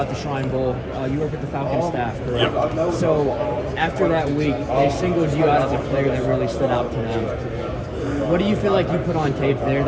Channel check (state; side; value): identical; both; correlation 1.00